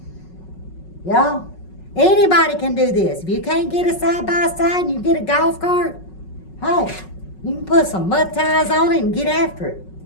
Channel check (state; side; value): late; right; 5.4 ms